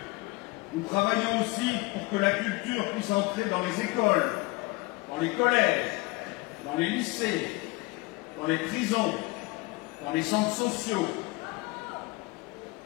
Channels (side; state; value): right; quieter; 23.4 dB